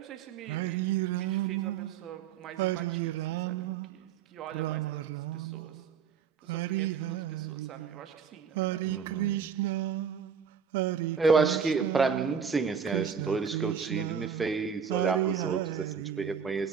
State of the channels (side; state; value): left; quieter; 7.0 dB